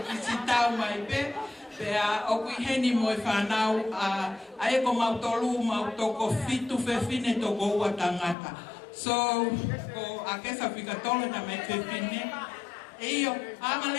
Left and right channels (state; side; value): drops out; right; at 8.3 s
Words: si tau mai pe. Pea oku heni mo whanau ae ko mautolu mautoko fitu whewhine toko ua tangata. So, ko Akesa whikatolo ta me whewhine. Eio,